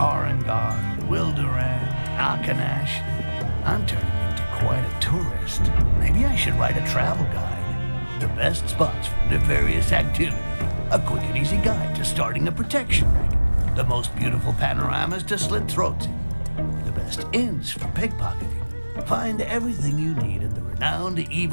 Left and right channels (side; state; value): both; inverted; correlation -1.00